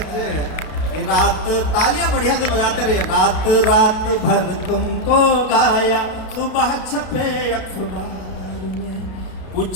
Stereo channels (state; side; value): late; right; 32 ms